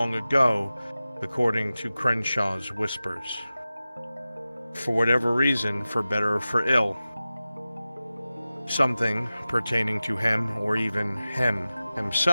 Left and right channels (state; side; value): inverted; both; correlation -0.96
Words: ago, according to Crenshaw's whispers. For whatever reason, for better or for ill, something pertaining to him or even him